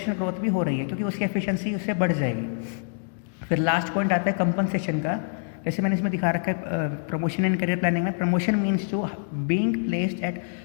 ग्रोथ भी हो रही है, क्योंकि उसकी एफिशिएंसी उससे बढ़ जाएगी। फिर लास्ट पॉइंट आता है कंपनसेशन का। जैसे मैंने इसमें दिखा रखा है प्रमोशन एंड करियर प्लानिंग में, promotion means to being placed at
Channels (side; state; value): right; silent; digital silence